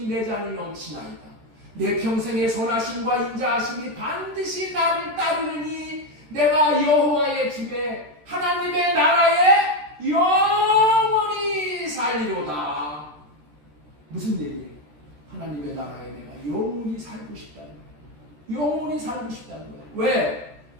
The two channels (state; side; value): late; left; 13 ms